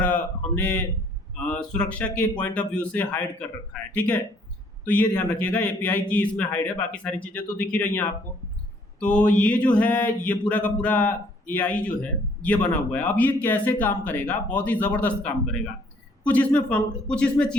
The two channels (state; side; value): normal; both; correlation 0.62